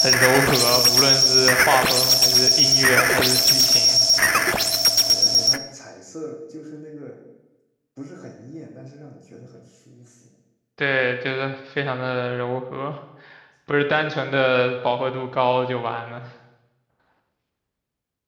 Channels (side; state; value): both; identical; correlation 1.00